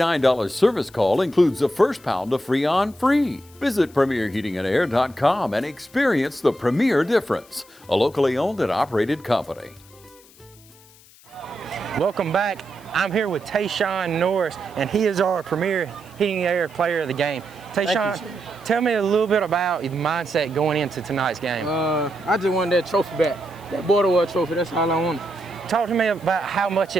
service call includes the first pound of Freon free. Visit PremierHeatingandAir.com and experience the Premier difference, a locally owned and operated company. Welcome back. I'm here with Tayshawn Norris, and he is our Premier Heating and Air player of the game. Tayshawn, tell me a little bit about the mindset going into tonight's game. I just wanted that trophy back, that border war trophy. That's all I wanted. Talk to me about how much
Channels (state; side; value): noise; left; hiss, 25 dB below the sound